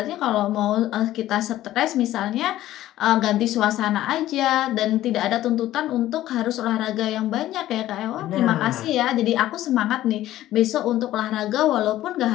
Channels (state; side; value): quieter; right; 14.2 dB